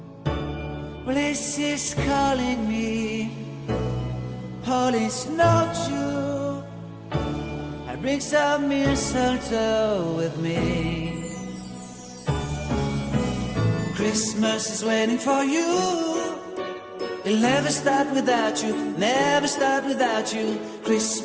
Well, this is calling me, holy snowshoe. I bring some mistletoe with me. Christmas is waiting for you. It'll never start without you, never start without you.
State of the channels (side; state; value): both; identical; correlation 1.00